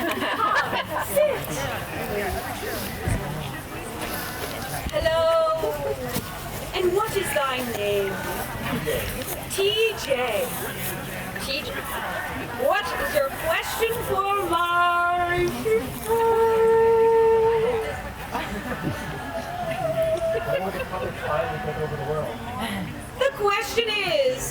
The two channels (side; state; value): both; identical; correlation 1.00